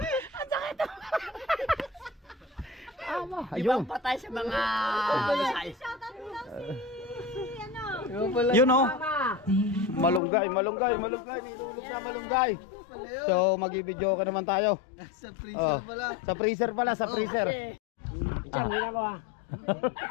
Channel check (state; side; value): drops out; right; at 10.2 s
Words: Ang sakit ng Ayun. Ibang patay sa mga... Shoutout mo lang si ano. Yun o. Malunggay. Nilulog na malunggay. So, mag-i-video ka naman tayo. Sa freezer pala. Sa freezer. Diyan, hindi na ko ah.